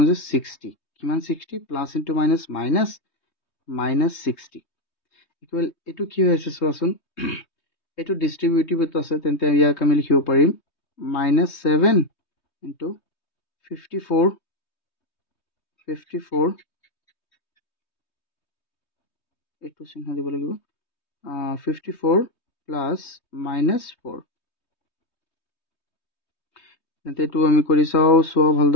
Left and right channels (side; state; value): right; late; 3.2 ms